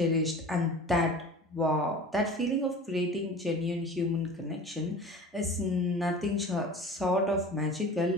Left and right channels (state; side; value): normal; both; correlation 0.39